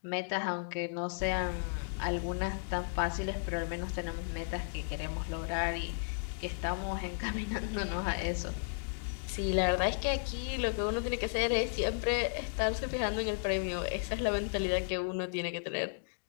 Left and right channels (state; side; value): silent; right; digital silence